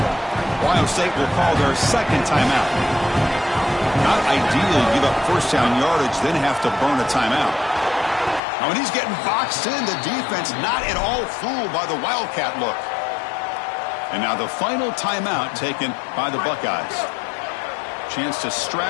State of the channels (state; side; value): drops out; right; at 8.4 s